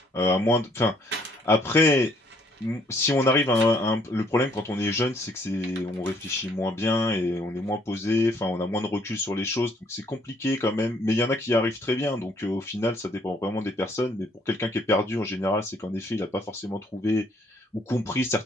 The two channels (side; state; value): both; normal; correlation 0.65